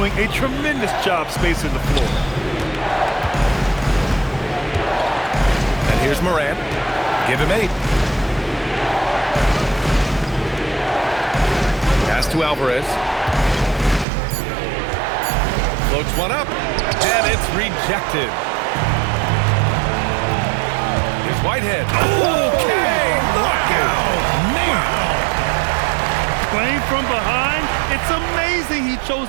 a tremendous job spacing the floor. And here's Morant. Give him 8. Pass to Alvarez. Floats one up, and it's rejected. Here's Whitehead. Okay, look out! Man! Playing from behind, it's amazing he chose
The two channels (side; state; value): left; drops out; at 14.1 s